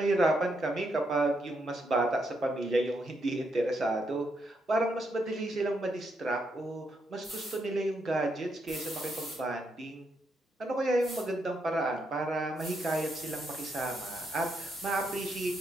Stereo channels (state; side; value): normal; both; correlation 0.79